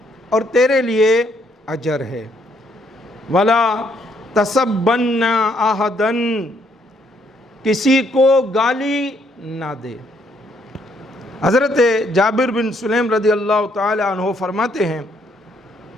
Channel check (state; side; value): normal; both; correlation 0.70